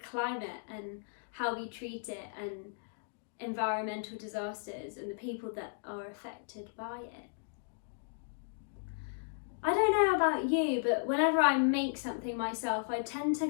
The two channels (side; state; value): right; silent; digital silence